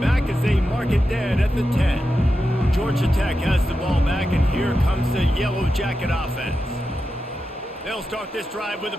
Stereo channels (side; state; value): both; normal; correlation 0.89